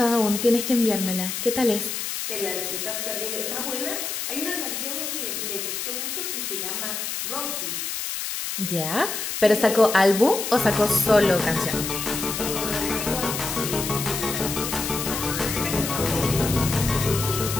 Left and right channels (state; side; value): noise; left; hiss, 4 dB below the sound